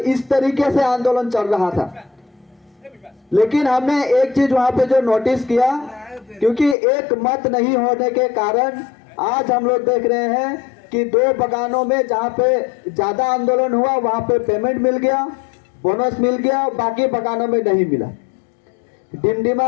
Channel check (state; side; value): drops out; right; at 6.8 s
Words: तरीके से आंदोलन चल रहा था। लेकिन हमने एक चीज वहां पे जो नोटिस किया, क्योंकि एक मत नहीं होने के कारण आज हम लोग देख रहे हैं कि 2 बगानों में जहाँ पे ज्यादा आंदोलन हुआ वहां पे पेमेंट मिल गया, बोनस मिल गया, बाकी बगानों में नहीं मिला।